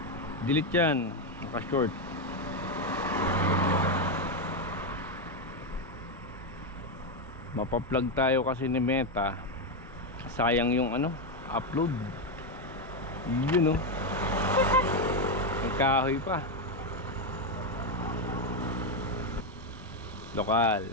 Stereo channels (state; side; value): normal; both; correlation 0.06